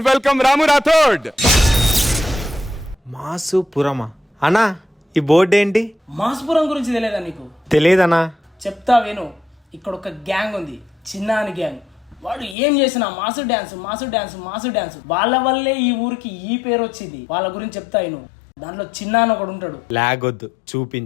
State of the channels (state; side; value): drops out; right; at 12.6 s